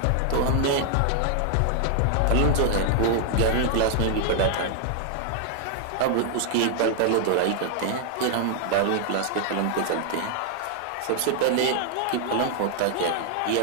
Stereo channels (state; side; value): different; both; correlation 0.00